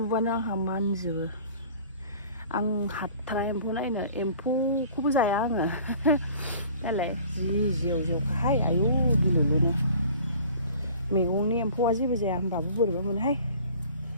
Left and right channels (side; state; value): both; inverted; correlation -0.48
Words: आंहा मानजोबो आं हाथारा एम्फौ नायनो एम्फौखौबो जाया आङो नालाय जि जेव जेवखाहाय आयु गिलुलुनो मैगंनि एम्फौआ जेबो जाया होमबाबो बोरैबा मोनोहाय